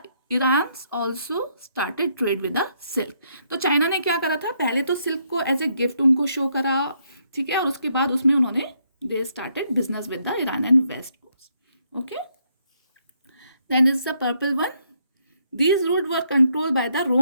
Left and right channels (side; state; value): both; inverted; correlation -0.73